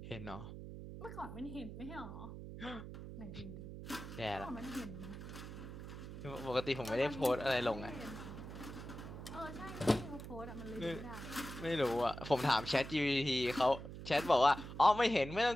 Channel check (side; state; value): right; noise; hum, 10 dB below the sound